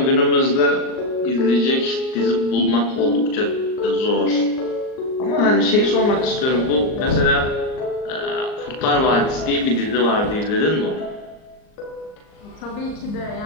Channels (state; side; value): late; right; 38 ms